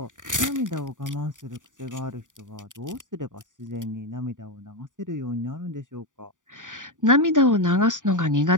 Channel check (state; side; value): late; left; 0.87 ms